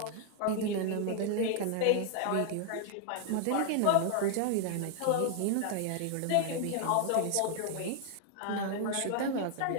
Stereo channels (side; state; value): both; different; correlation 0.00